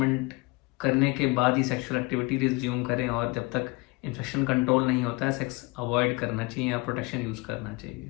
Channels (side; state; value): right; quieter; 25.7 dB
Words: करने के बाद ही सेक्सुअल एक्टिविटी रिज्यूम करें, और जब तक इन्फेक्शन कंट्रोल नहीं होता है सेक्स अवॉइड करना चाहिए या प्रोटेक्शन यूज़ करना